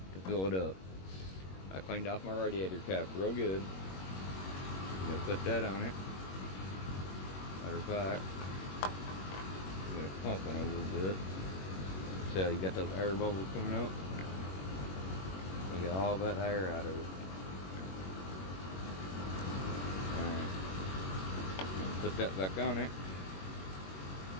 to fill it up. I cleaned off my radiator cap real good. I'm gonna put that on it. Matter of fact, I'm gonna pump it a little bit. See how you got those air bubbles coming up? We got all that air out of it. Alright. Put that back on it.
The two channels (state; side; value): late; right; 21 ms